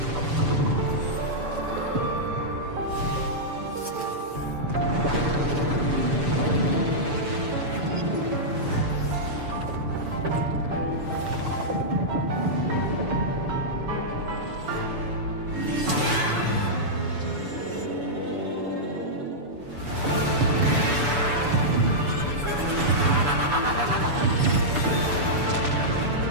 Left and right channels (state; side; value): late; left; 6.9 ms